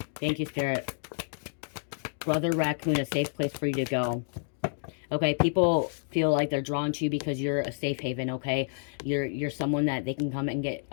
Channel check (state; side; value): silent; right; digital silence